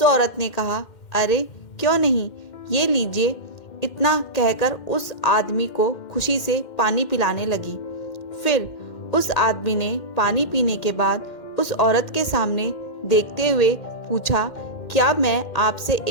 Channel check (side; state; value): right; late; 2.1 ms